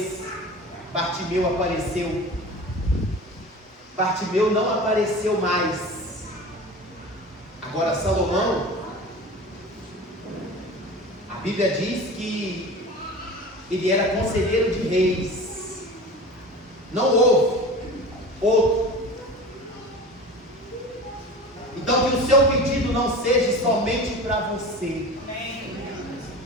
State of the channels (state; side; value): normal; both; correlation 0.35